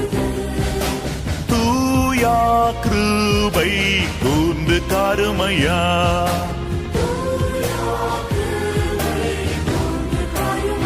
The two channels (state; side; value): identical; both; correlation 1.00